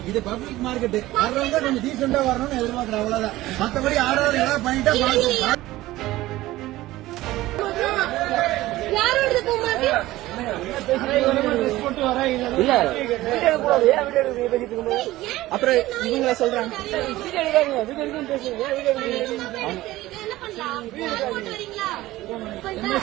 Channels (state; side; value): quieter; left; 17.0 dB